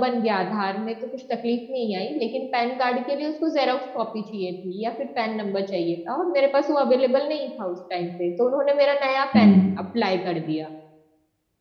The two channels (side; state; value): both; identical; correlation 1.00